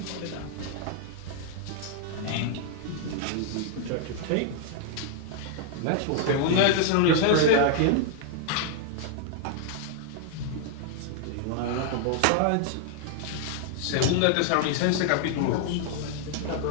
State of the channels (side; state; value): both; different; correlation 0.00